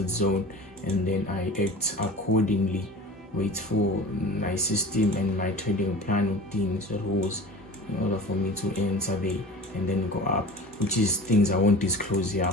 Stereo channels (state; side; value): normal; both; correlation 0.38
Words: zone, and then I act accordingly, wait for my system and my trading plan routines, rules, in order for me to enter there and then go up, which is things I won't disclose here,